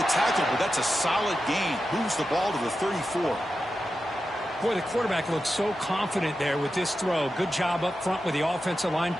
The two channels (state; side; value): normal; both; correlation 0.91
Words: tackle, but that's a solid gain. Moves the ball to the 34. Boy, the quarterback looks so confident there with this throw. Good job up front with the offensive line